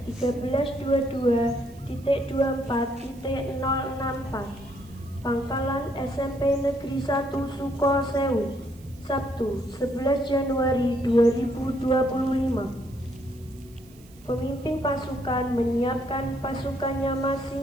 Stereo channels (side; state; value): right; noise; hiss, 26 dB below the sound